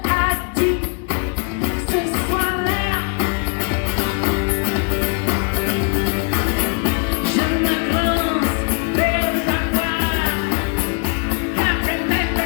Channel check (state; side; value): quieter; right; 37.9 dB